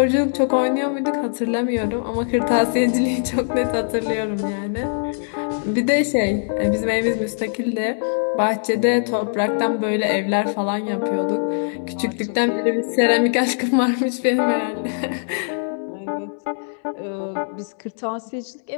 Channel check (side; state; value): right; silent; digital silence